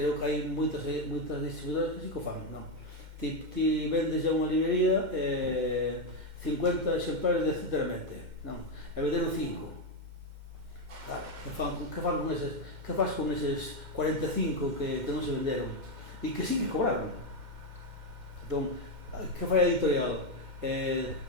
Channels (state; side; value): late; left; 2.1 ms